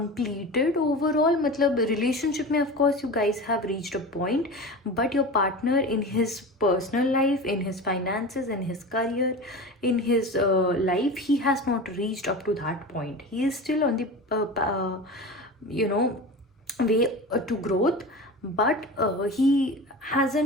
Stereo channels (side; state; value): both; normal; correlation 0.31